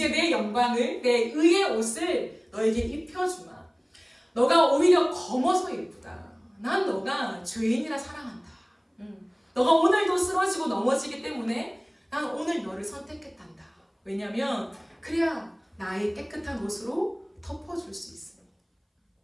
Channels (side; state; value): both; identical; correlation 1.00